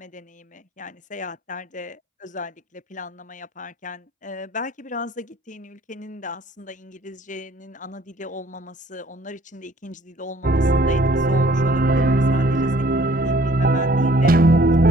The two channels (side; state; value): both; normal; correlation 0.58